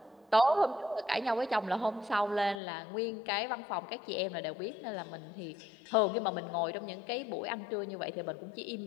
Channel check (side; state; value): right; drops out; at 2.6 s